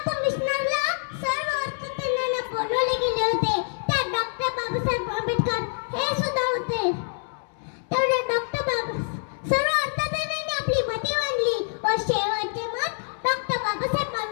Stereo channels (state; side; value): silent; right; digital silence